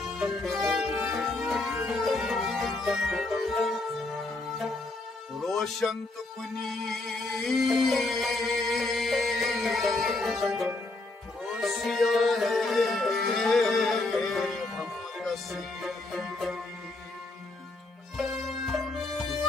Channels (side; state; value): right; quieter; 3.0 dB